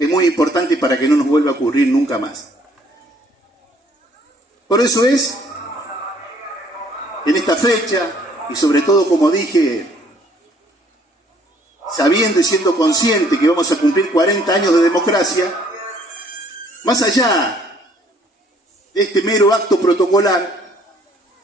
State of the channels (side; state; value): both; normal; correlation 0.61